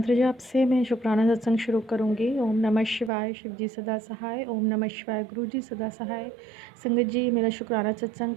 जाप से मैं शुक्राना सत्संग शुरू करूँगी। ओम नमः शिवाय, शिव जी सदा सहाय। ओम नमः शिवाय, गुरु जी सदा सहाय। संगत जी, मेरा शुक्राना सत्संग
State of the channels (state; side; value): drops out; left; at 3.1 s